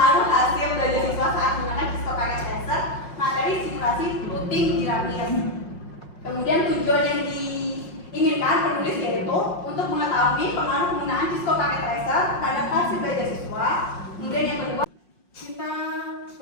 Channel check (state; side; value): late; right; 5.6 ms